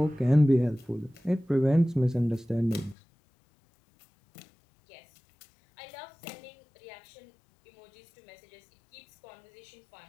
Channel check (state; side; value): drops out; right; at 3.0 s